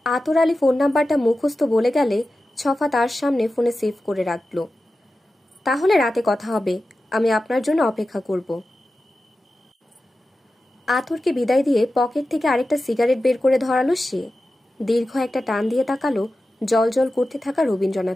আতর আলী ফোন নাম্বারটা মুখস্থ বলে গেলে ছফা তার সামনে ফোনে সেভ করে রাখল। তাহলে রাতে কথা হবে, আমি আপনার জন্য অপেক্ষা করব। আতরকে বিদায় দিয়ে পকেট থেকে আরেকটা সিগারেট বের করে ধরালো সে। দীর্ঘ একটা টান দিয়ে তাকালো জল করতে থাকা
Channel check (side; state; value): both; normal; correlation 0.93